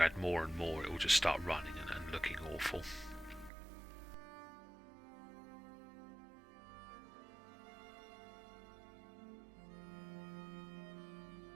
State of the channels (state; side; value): drops out; left; at 3.5 s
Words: add more and more it will just start running and looking awful.